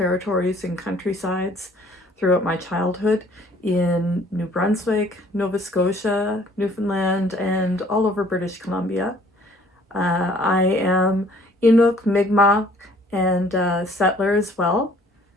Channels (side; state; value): both; normal; correlation 0.57